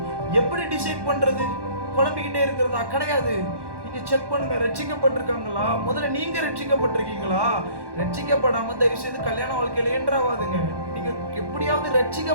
எப்படி டிசைட் பண்றது? குழம்பிக்கிட்டே இருக்கிறதா? கிடையாது. நீங்க செக் பண்ணுங்க, ரட்சிக்கப்பட்டிருக்காங்களா? முதல்ல நீங்க ரட்சிக்கப்பட்டிருக்கீங்களா? ரட்சிக்கப்படாம தயவு செய்து கல்யாண வாழ்க்கையில என்ட்ராவாதுங்க. நீங்க எப்படியாவது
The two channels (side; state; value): left; late; 1.1 ms